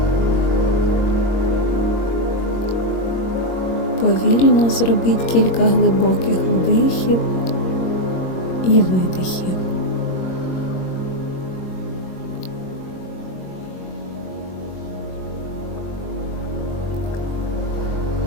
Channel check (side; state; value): right; late; 22 ms